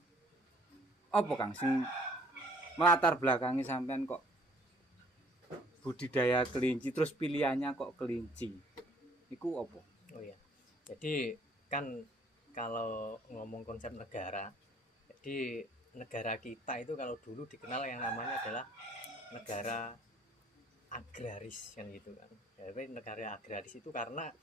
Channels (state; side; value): normal; both; correlation 0.59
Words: apa Kang sing melatar belakangi sampean kok budidaya kelinci terus pilihannya kok kelinci? Iku apa? Oh iya. Jadi kan kalau ngomong konsep negara, jadi negara kita itu kalau dulu dikenal yang namanya adalah negara agraris kan gitu kan. Jadi negara agraris itu karena